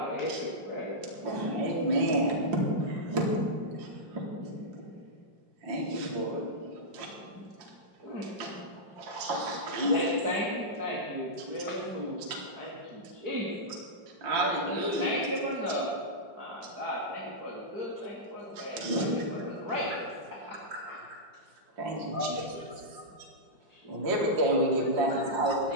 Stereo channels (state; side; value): late; left; 5.7 ms